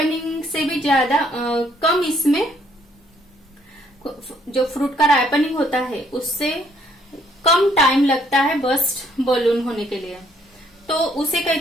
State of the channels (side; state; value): both; normal; correlation 0.67